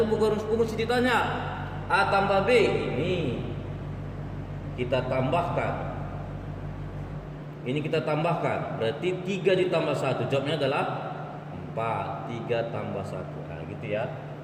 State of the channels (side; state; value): both; identical; correlation 1.00